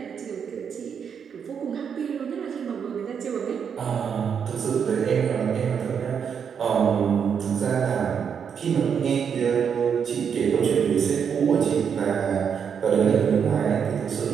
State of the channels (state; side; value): quieter; left; 7.2 dB